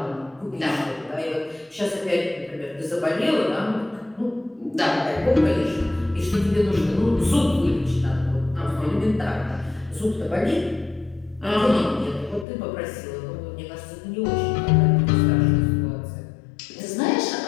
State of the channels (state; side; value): drops out; right; at 12.5 s